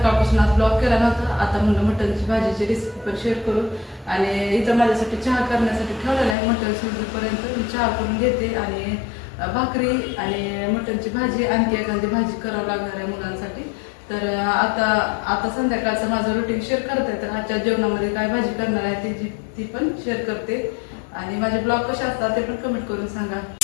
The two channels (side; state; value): right; drops out; at 6.4 s